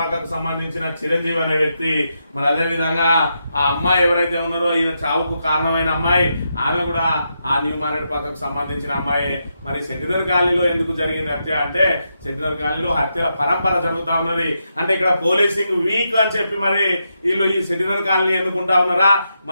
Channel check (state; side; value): inverted; both; correlation -0.83